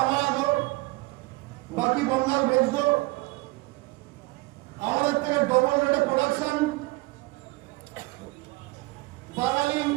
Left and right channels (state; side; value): quieter; left; 22.7 dB